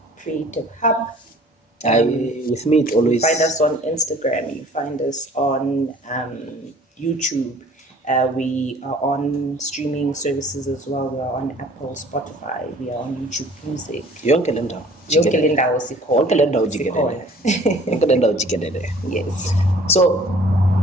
Creative Hub. With me, it always. You find us on Instagram. You find us on YouTube. We are on streaming services as well. We are on Apple, Spotify. We are on YouTube Music. Yonke le ndawo jikelele. Yes. So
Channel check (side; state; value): both; normal; correlation 0.52